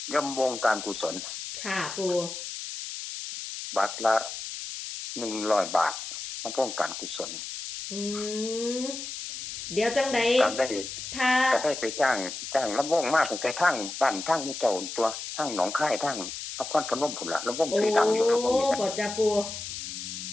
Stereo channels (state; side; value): noise; left; hiss, 8 dB below the sound